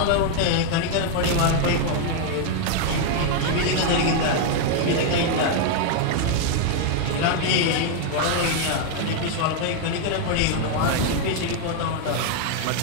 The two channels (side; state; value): both; different; correlation 0.00